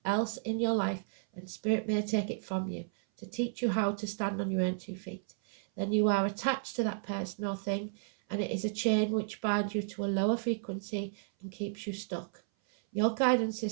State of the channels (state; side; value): silent; left; 56 dB below the other